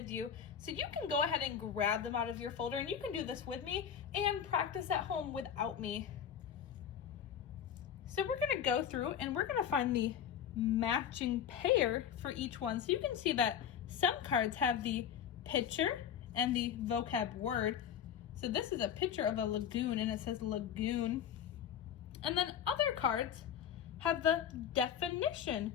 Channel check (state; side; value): quieter; right; 8.7 dB